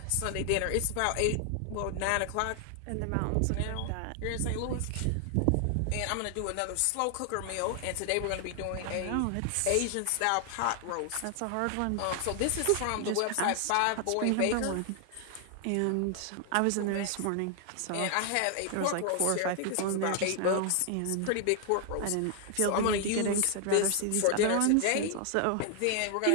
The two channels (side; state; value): both; different; correlation 0.00